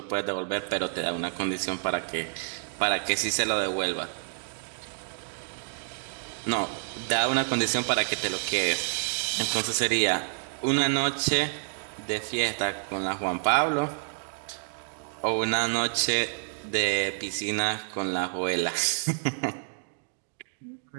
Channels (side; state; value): left; silent; digital silence